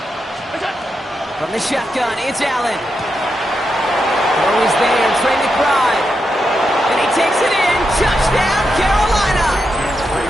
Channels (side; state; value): both; normal; correlation 0.85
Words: From the shotgun, it's Allen. Throw is there, Trey McBride. And he takes it in. Touchdown, Carolina!